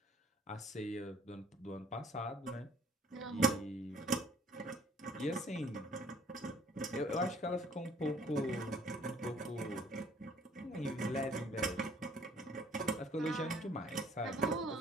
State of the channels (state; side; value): normal; both; correlation 0.58